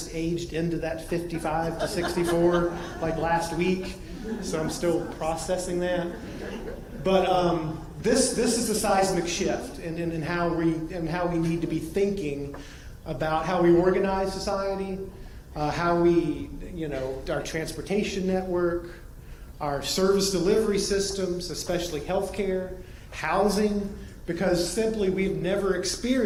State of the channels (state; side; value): identical; both; correlation 1.00